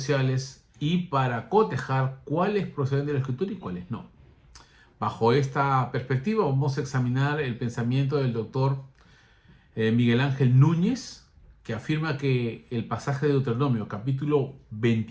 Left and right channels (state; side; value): identical; both; correlation 1.00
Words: y para cotejar cuáles proceden de la Escritura y cuáles no. Bajo esta perspectiva vamos a examinar el pensamiento del doctor Miguel Ángel Núñez, que afirma que el pasaje de Deuteronomio, capítulo